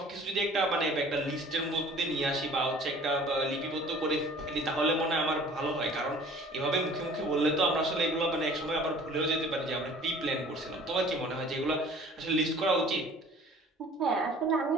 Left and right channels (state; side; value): normal; both; correlation 0.49